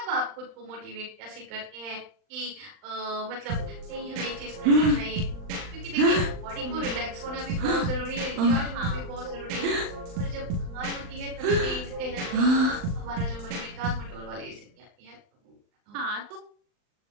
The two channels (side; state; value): left; late; 39 ms